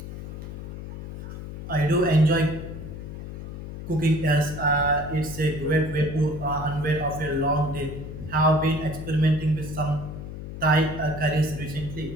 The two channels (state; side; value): noise; left; hum, 9 dB below the sound